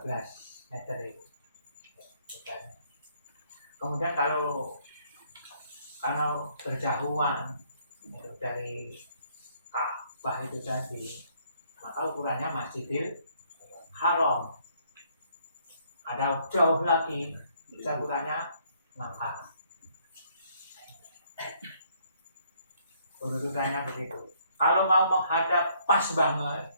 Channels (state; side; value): inverted; both; correlation -0.66